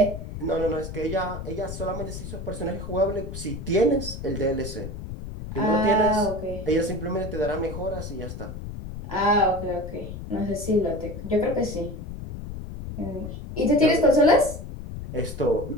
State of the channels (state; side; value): noise; left; rumble, 9 dB below the sound